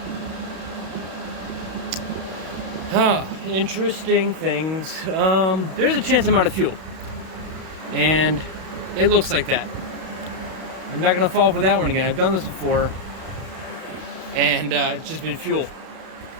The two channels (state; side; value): late; left; 32 ms